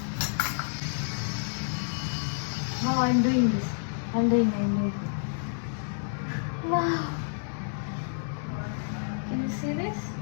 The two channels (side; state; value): right; silent; digital silence